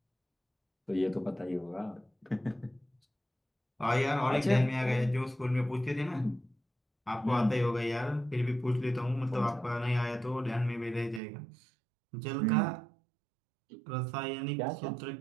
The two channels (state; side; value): drops out; left; at 11.2 s